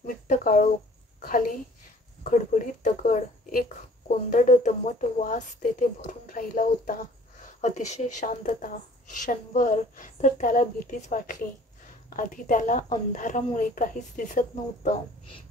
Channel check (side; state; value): both; normal; correlation 0.52